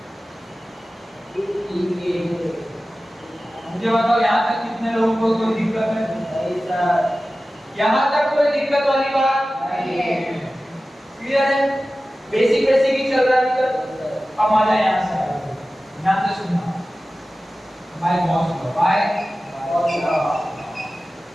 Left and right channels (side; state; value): both; normal; correlation 0.96